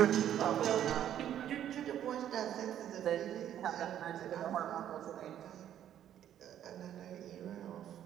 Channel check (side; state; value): left; quieter; 10.7 dB